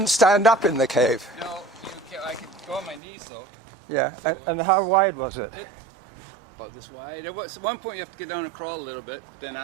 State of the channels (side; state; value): left; drops out; at 3.0 s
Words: stand up in the cave. No, I could go on my knees though. Yeah, and how wide was it? About this wide. At one point you have to get down and crawl a little bit. Then